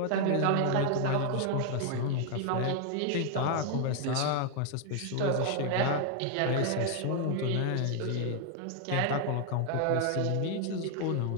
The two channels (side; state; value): both; different; correlation 0.00